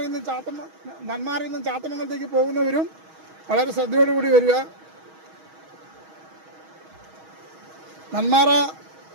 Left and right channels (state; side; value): late; left; 6.3 ms